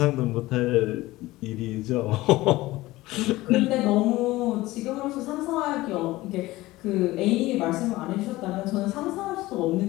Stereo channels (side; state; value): right; quieter; 18.4 dB